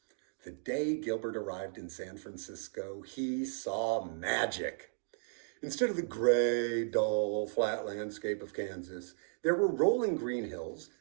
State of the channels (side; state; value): left; silent; digital silence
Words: The day Gilbert arrived in San Francisco, he saw magic. Instead of the gray, dull, flat landscape of Kansas, there were rolling green hills,